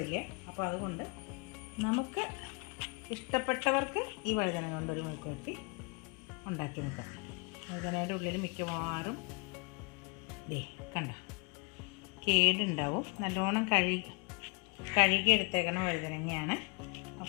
അപ്പോൾ അതുകൊണ്ട് നമുക്ക് ഇഷ്ടപ്പെട്ടവർക്ക് ഈ വഴുതന കൊണ്ടൊരു മെഴുക്കുവരട്ടി ഉണ്ടാക്കി നോക്കാം. വഴുതനയുടെ ഉള്ളിൽ മിക്കവാറും കണ്ട കേടുണ്ടാവും. നല്ലോണം കഴുകി എടുത്തേക്കണ വഴുതനങ്ങയാണ്.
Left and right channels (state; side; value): quieter; right; 33.3 dB